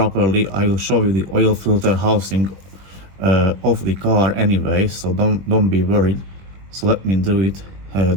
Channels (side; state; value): left; late; 21 ms